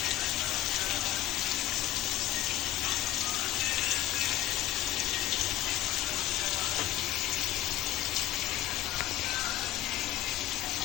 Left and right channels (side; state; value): right; quieter; 14.2 dB